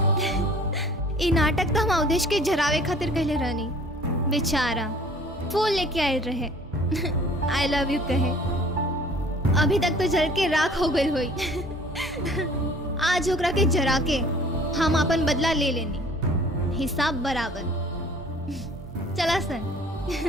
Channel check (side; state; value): both; normal; correlation 0.51